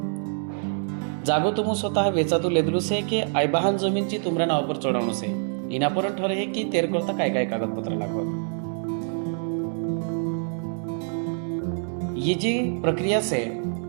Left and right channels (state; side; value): silent; left; 61 dB below the other